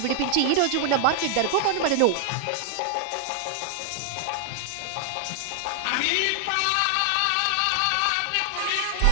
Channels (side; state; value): both; different; correlation 0.00